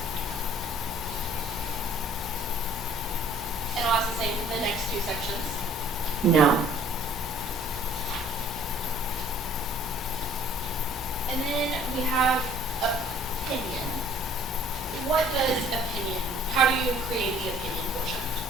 And I'll ask the same for the next two sections. No. And then we have opinion. What does opinion, how do you create the opinion portion?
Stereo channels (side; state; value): both; normal; correlation 0.55